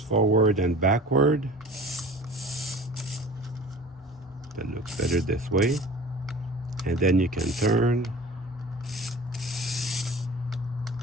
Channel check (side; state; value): both; normal; correlation 0.42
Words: and backward. That looks better this way. And then you can turn.